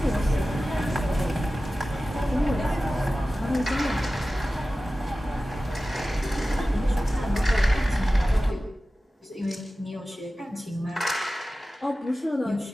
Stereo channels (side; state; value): both; normal; correlation 0.96